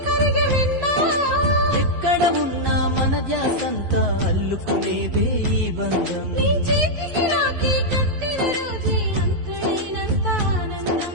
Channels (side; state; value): left; late; 11 ms